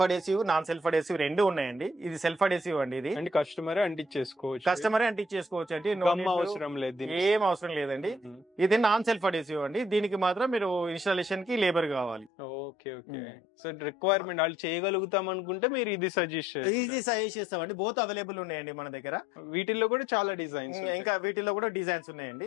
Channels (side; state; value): right; drops out; at 12.3 s